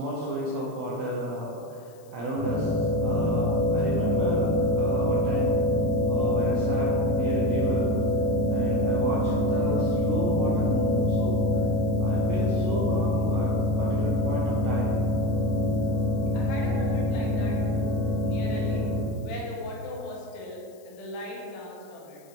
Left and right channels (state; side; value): noise; left; hiss, 30 dB below the sound